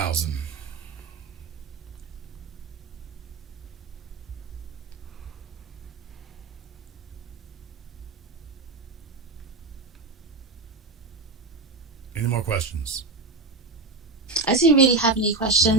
Any more questions? I didn't really have any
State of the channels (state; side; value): quieter; left; 3.8 dB